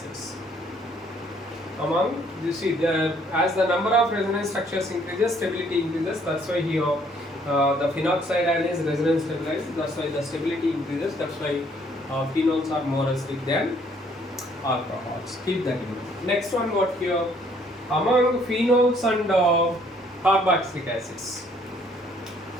Among, you see, as the number of resonance structures increases, stability increases. That's why here the phenoxide ion is resonance stabilized. That's why the stability increases. That's why phenols are more acidic than alcohols. Keep that in mind. Next one, what here? Among phenols and carboxylic acids.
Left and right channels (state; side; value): normal; both; correlation 0.63